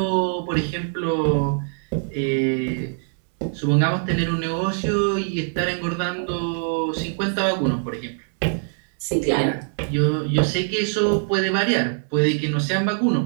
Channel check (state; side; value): silent; left; 63 dB below the other